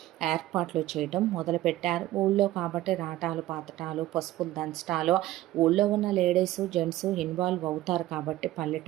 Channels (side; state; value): left; quieter; 15.5 dB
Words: ఏర్పాట్లు చేయడం మొదలుపెట్టారు. ఊళ్ళో కాబట్టి రాటాలు పాతటాలు పసుపులు దంచటాలు ఊళ్ళో ఉన్న లేడీస్ జెంట్స్ ఇన్వాల్వ్ అవుతారు కాబట్టి